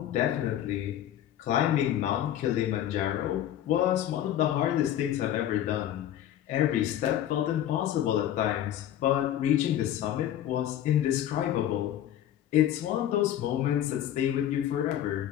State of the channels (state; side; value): quieter; right; 11.5 dB